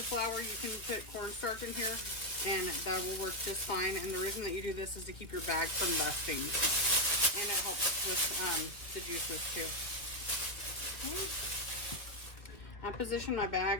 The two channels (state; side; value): late; right; 2.0 ms